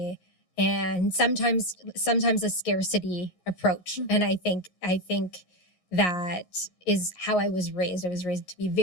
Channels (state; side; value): late; right; 11 ms